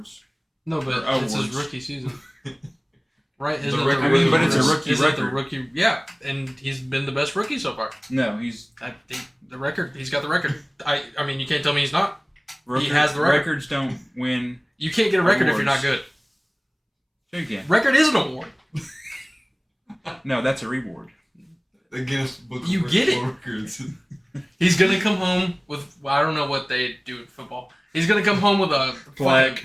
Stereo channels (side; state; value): both; identical; correlation 1.00